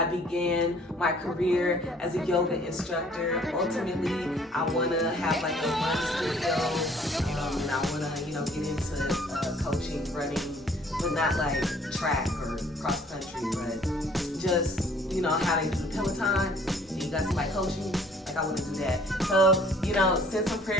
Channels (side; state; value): both; normal; correlation 0.57